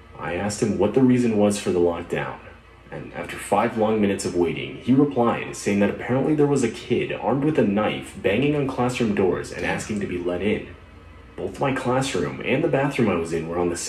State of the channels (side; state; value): both; identical; correlation 1.00